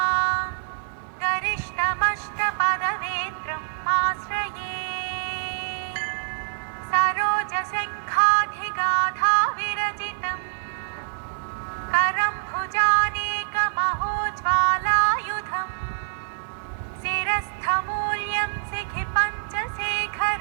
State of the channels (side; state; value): left; silent; digital silence